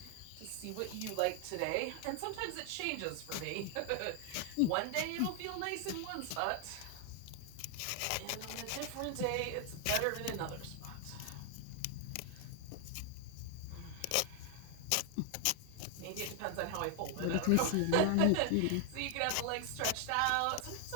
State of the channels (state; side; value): different; both; correlation 0.00